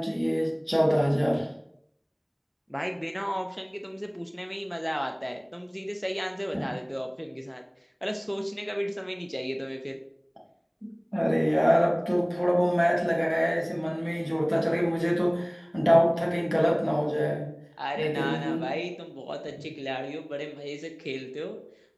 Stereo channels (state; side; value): identical; both; correlation 1.00